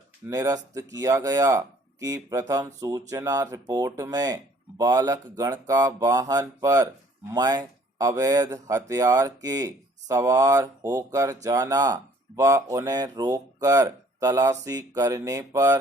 निरस्त किया गया कि प्रथम सूचना रिपोर्ट में बालक गण का वाहन पर मैं अवैध हथियार के सवार होकर जाना व उन्हें रोककर तलाशी करने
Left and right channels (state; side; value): normal; both; correlation 0.58